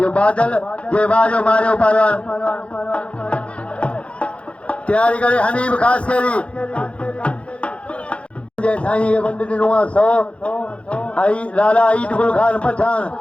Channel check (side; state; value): right; late; 0.061 ms